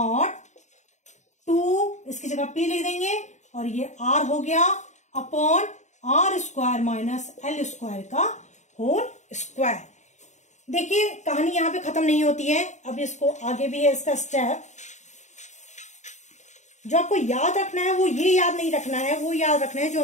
2 इसकी जगह P लिख देंगे, और ये R हो गया upon r square minus l square का होल स्क्वायर। देखिए कहानी यहां पे खत्म नहीं होती है, अब इसको आगे भी है इसका स्टेप। जो आपको याद रखना है वो ये याद नहीं रखना है, वो याद रखना है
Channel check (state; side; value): late; right; 0.34 ms